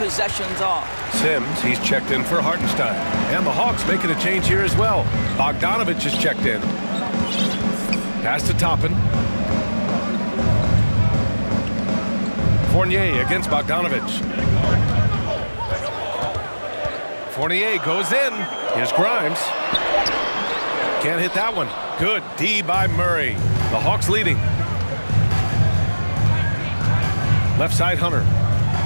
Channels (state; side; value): inverted; both; correlation -1.00